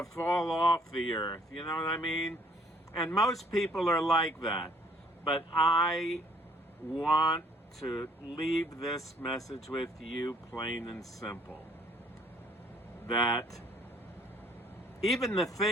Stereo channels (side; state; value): both; normal; correlation 0.61